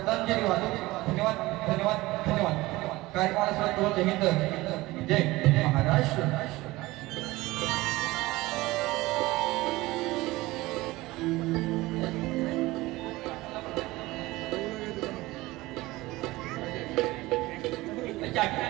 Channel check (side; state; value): left; quieter; 19.6 dB